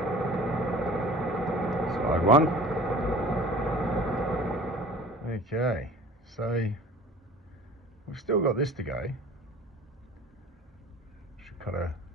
Side one. Okay, so we've still got this to go. Should cut at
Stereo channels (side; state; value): both; normal; correlation 0.45